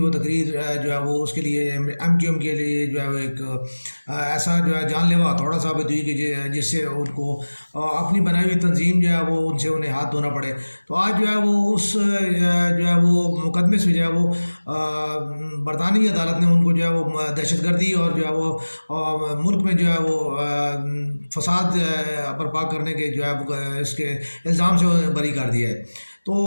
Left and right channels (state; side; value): inverted; both; correlation -1.00